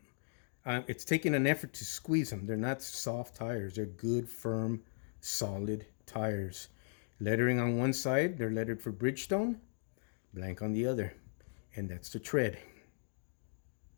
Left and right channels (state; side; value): silent; right; digital silence